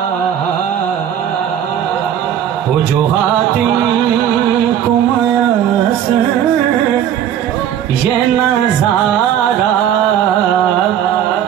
वो जो हातिम को मयसर ये नजारा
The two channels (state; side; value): quieter; left; 10.0 dB